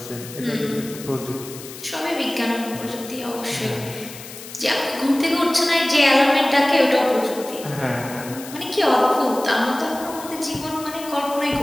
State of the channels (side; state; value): left; noise; hiss, 14 dB below the sound